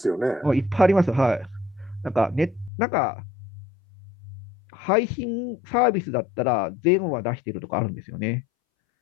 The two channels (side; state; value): right; drops out; at 2.7 s